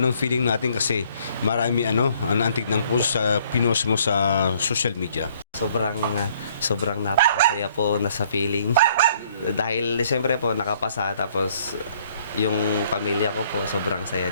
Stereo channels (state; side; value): inverted; both; correlation -0.62